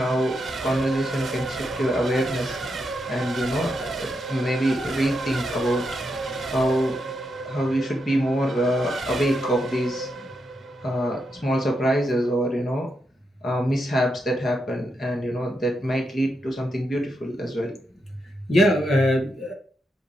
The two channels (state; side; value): normal; both; correlation 0.83